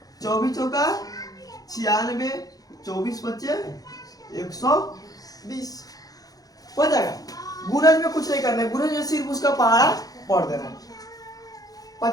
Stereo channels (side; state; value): right; late; 0.18 ms